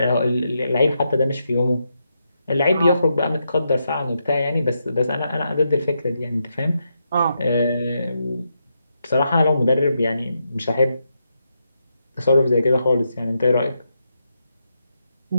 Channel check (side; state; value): both; inverted; correlation -0.82